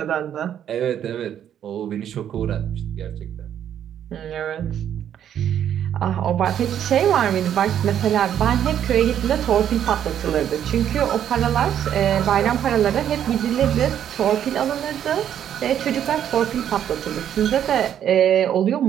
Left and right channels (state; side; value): quieter; left; 9.9 dB